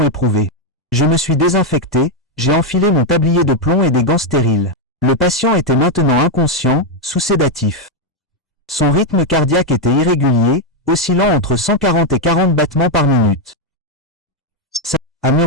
éprouvée. Je me suis désinfecté, j'ai enfilé mon tablier de plomb et des gants stériles. Le patient était maintenant inconscient, sous sédatif. Son rythme cardiaque était irrégulier, oscillant entre 140 et 40 battements par minute. Ça, a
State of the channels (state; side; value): normal; both; correlation 0.03